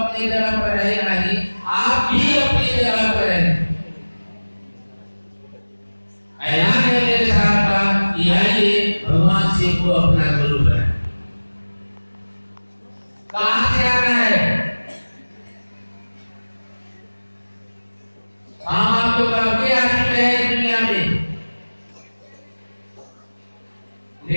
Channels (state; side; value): inverted; both; correlation -1.00